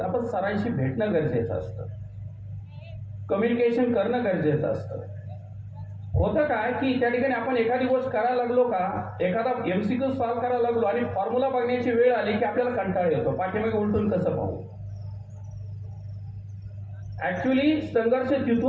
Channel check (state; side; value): identical; both; correlation 1.00